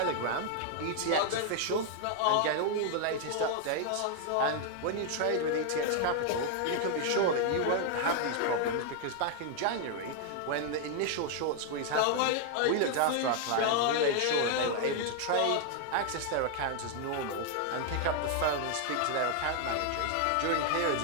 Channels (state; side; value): different; both; correlation 0.00